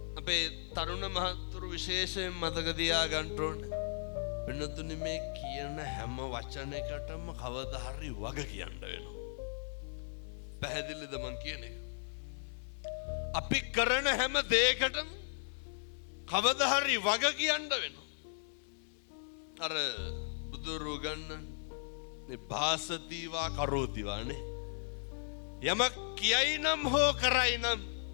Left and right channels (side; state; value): right; silent; digital silence